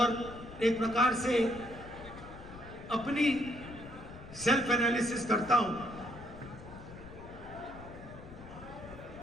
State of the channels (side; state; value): left; noise; rumble, 15 dB below the sound